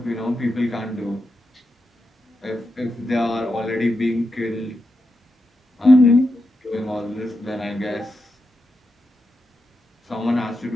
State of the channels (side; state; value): both; normal; correlation 0.87